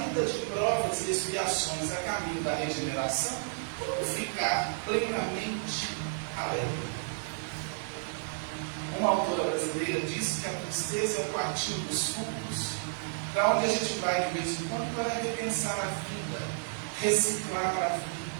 de provas e expiações a caminho da regeneração, como ficar plenamente alegre? Uma autora brasileira disse que a tristeza é o quartinho dos fundos, para onde a gente vai de vez em quando para repensar a vida, reciclar a vida,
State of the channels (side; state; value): left; silent; 57 dB below the other